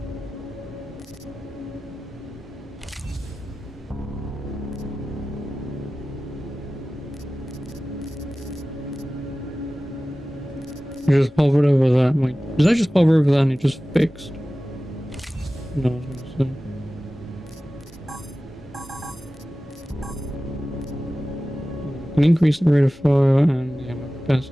I just hovered over that. Wait, did I just hover over that and it just fixed? No, I was gonna say. Can increase the rate of fire and the ammo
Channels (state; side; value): normal; both; correlation 0.96